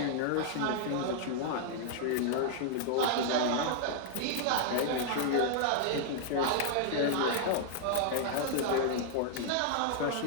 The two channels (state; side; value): different; both; correlation 0.00